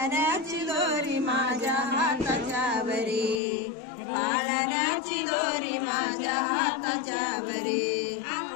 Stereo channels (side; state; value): right; drops out; at 3.4 s